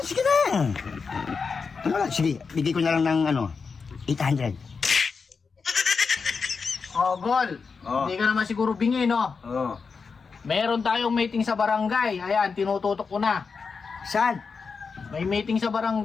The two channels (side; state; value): right; quieter; 5.2 dB